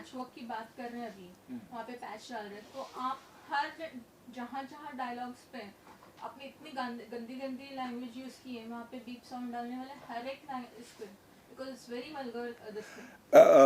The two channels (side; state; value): both; identical; correlation 1.00